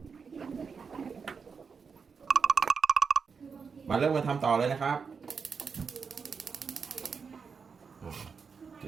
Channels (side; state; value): left; quieter; 5.7 dB